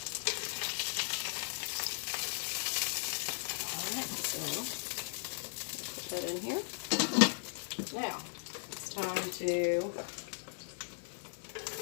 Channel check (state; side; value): silent; right; 53 dB below the other